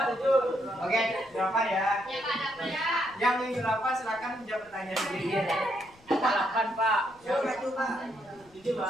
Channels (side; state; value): left; noise; rumble, 29 dB below the sound